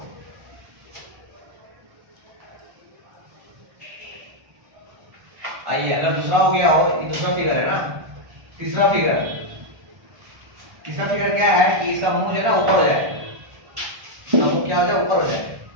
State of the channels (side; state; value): left; late; 1.4 ms